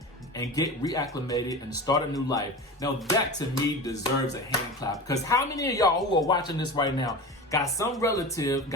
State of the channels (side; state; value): both; normal; correlation 0.30